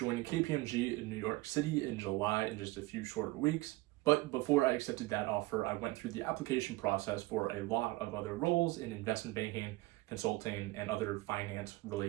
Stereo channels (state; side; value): quieter; left; 20.2 dB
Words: KPMG in New York City in July in just a few short weeks, but before I accepted that offer, I went through the application process for a lot of other roles in investment banking, consulting, and other